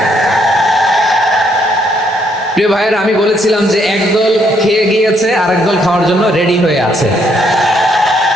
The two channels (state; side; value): normal; both; correlation 0.71